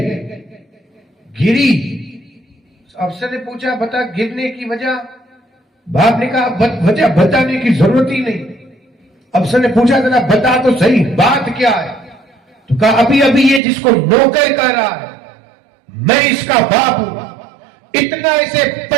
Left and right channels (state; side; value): drops out; left; at 13.6 s